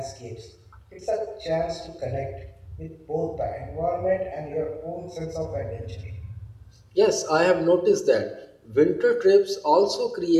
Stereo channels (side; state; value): both; identical; correlation 1.00